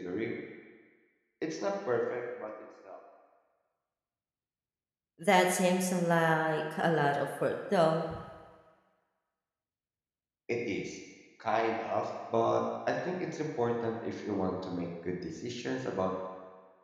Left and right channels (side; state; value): both; identical; correlation 1.00